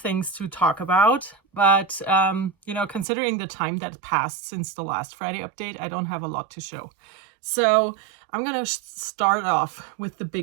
to talk about, but considering the time that passed since the last Friday update, I don't have a lot to show. So I'm gonna start off with the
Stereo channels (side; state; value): left; drops out; at 3.1 s